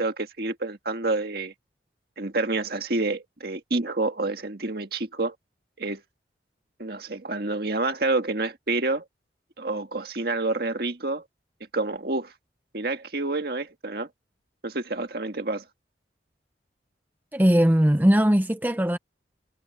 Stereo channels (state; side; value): normal; both; correlation 0.53